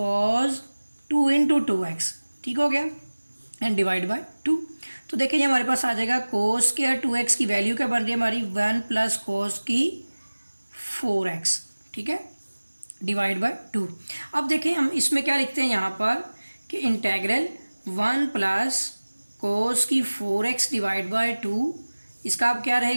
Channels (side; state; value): both; inverted; correlation -1.00